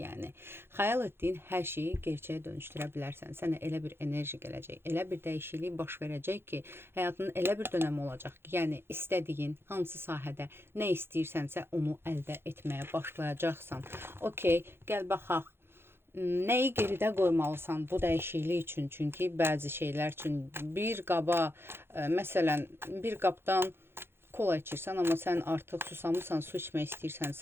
Xəyal etdiyin hər şeyi gerçəyə dönüşdürə bilərsən. Sənə elə bir enerji gələcək, elə bir dəyişiklik baş verəcək ki, həyatının elə bir dönəmi olacaq ki, yəni istədiyin hansı sahədə nə istəyirsənsə onu əldə etməyə başlayacaqsan. Okey, gəl baxaq. Nəyi geridə qoymalısan bu dəyişiklik üçün? Çünki bəzi şeylər üçün bir qaba, məsələn, bir qabdan kola içirsən, amma sən artıq susamısan, su içmək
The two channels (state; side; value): late; left; 0.11 ms